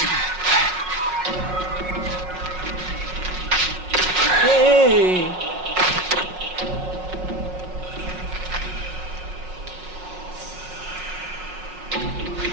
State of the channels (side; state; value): left; late; 5.5 ms